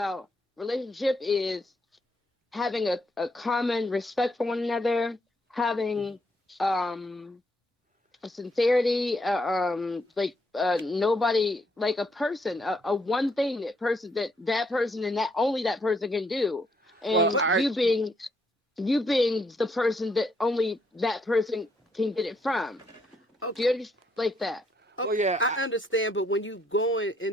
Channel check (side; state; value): both; normal; correlation 0.73